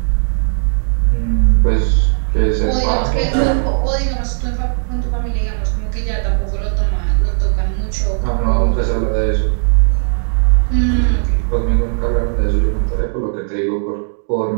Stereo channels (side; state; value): left; silent; 62 dB below the other